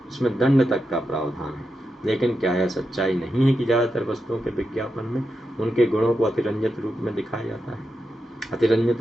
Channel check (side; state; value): both; normal; correlation 0.87